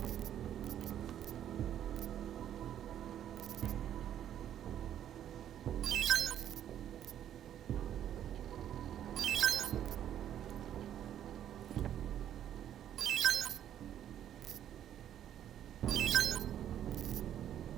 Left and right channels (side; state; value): left; quieter; 10.6 dB